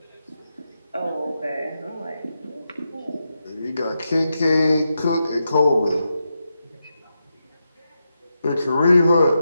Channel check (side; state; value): both; inverted; correlation -0.87